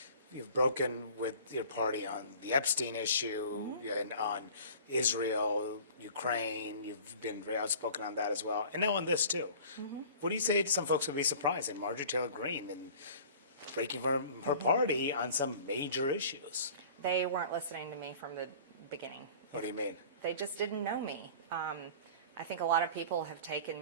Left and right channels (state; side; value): inverted; both; correlation -0.45